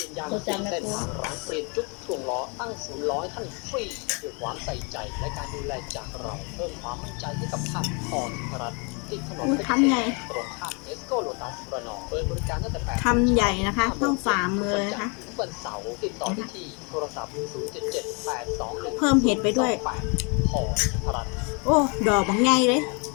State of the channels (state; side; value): quieter; right; 33.6 dB